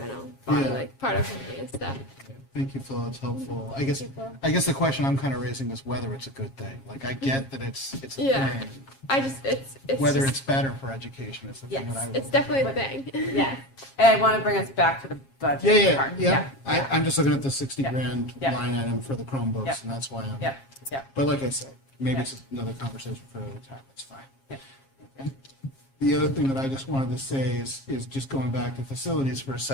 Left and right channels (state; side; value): late; right; 7.4 ms